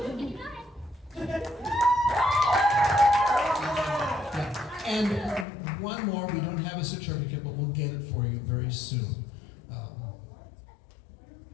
And one more, we don't have a certificate, but we'll get it for you very soon.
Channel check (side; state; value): right; drops out; at 5.5 s